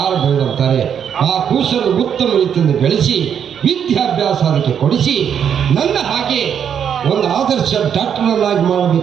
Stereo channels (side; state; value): left; quieter; 8.2 dB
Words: ಬೇಡಂತಾರೆ. ಆ ಕೂಸನ್ನು ಉತ್ತಮ ರೀತಿಯಿಂದ ಬೆಳೆಸಿ ವಿದ್ಯಾಭ್ಯಾಸ ಅದಕ್ಕೆ ಕೊಡಿಸಿ ನನ್ನ ಹಾಗೆ ಒಂದು ಆದರ್ಶ ಡಾಕ್ಟರ್ನಾಗಿ